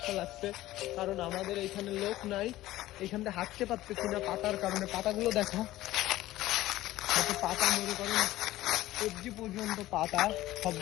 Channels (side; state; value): right; quieter; 15.9 dB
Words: লাগছে, কারণ আমাদের এইখানে লোক নাই। এইখান থেকে হাঁটতে পারতেছি না পাতার কারণে। পাতাগুলো দেখো, পাতা মনে করেন সবজি পর্যন্ত পাতা,